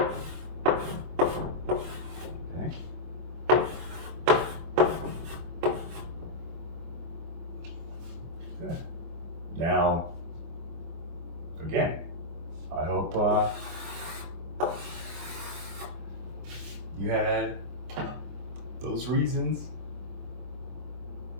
Okay. Good. Now, again, I hope you had those reasons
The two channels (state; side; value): late; left; 24 ms